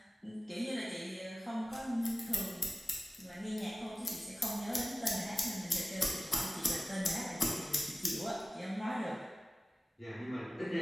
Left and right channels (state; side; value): normal; both; correlation 0.96